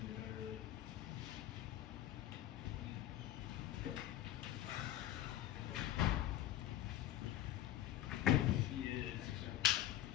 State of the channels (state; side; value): quieter; right; 13.0 dB